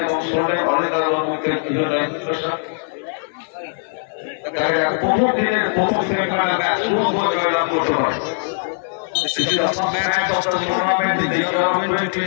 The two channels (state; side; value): silent; right; 65 dB below the other